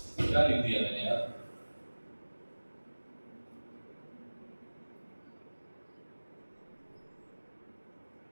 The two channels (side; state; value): both; inverted; correlation -1.00